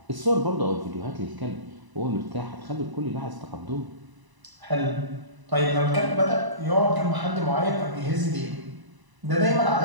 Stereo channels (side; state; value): left; late; 1.0 ms